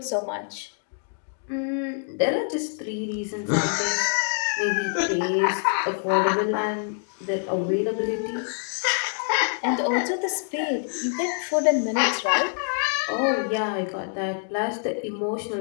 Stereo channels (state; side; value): silent; right; digital silence